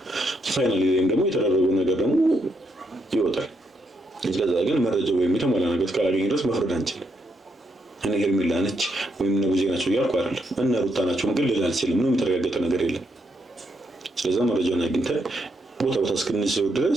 ፋይናሊ ደግሞ የተደረገው ነገር ደግሞ ይወጣል። ስለዛ ግን መረጃው ወይም የተሟላ ነገር እስካላገኘ ድረስ መፍረድ አንችልም። እኔ ሄርሜላ ነች ወይም ቡዜ ናቸው እያልኩ አይደለም። እና ሩታ ናቸው ግን ልል አልችልም። ምንም የተረጋገጠ ነገር የለም። ስለዛ መረጃውን አግኝተን ቦታ እስክንይዘው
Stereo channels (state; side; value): normal; both; correlation 0.78